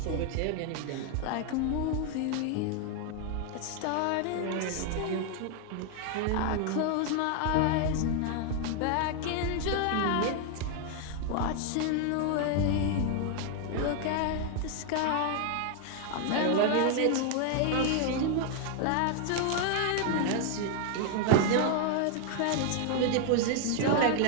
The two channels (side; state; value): both; different; correlation 0.00